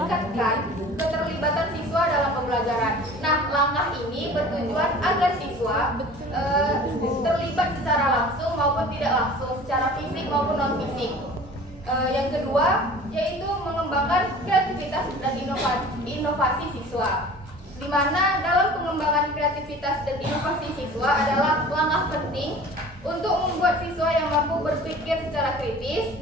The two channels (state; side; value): normal; both; correlation 0.43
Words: keterlibatan siswa dalam pembelajaran. Nah, langkah ini bertujuan agar siswa terlibat secara langsung maupun tidak langsung, secara fisik maupun non fisik. Yang kedua, yaitu mengembangkan kreativitas dan inovasi siswa, di mana dalam pengembangan kreativitas dan inovasi siswa adalah langkah penting untuk membuat siswa yang mampu berpikir secara kritis,